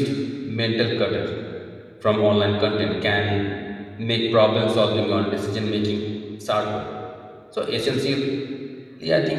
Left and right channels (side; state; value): both; identical; correlation 1.00